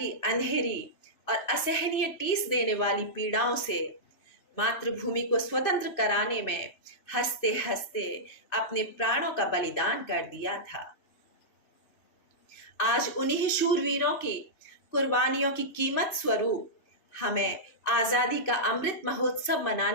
अंधेरी और असहनीय टीस देने वाली पीड़ाओं से मातृभूमि को स्वतंत्र कराने में हंसते हंसते अपने प्राणों का बलिदान कर दिया था। आज उन्हीं शूरवीरों की कुर्बानियों की कीमत स्वरूप हमें आजादी का अमृत महोत्सव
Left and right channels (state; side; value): late; right; 2.6 ms